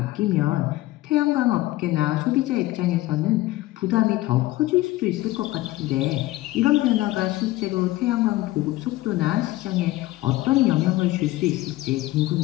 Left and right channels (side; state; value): right; quieter; 17.6 dB